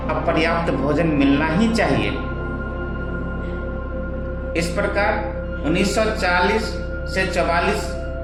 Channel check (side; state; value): both; identical; correlation 1.00